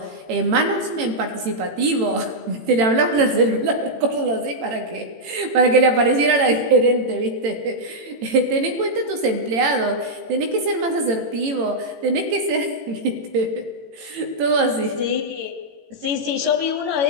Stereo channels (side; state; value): left; late; 18 ms